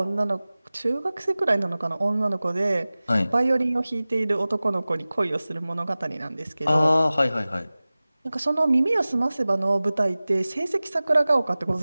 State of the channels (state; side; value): inverted; both; correlation -0.98